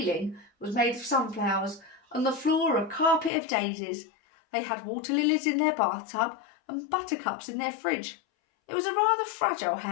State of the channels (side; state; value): right; drops out; at 3.3 s